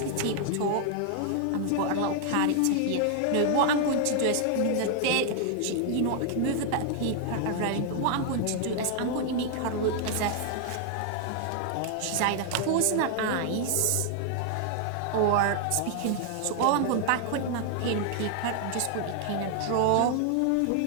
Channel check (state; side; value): different; both; correlation 0.00